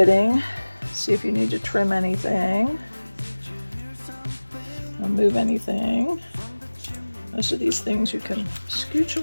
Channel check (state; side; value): inverted; both; correlation -1.00